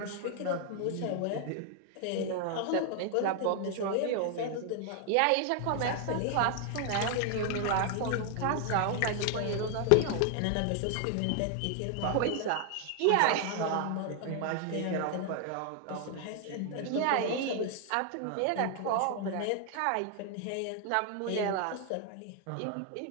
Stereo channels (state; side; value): different; both; correlation 0.00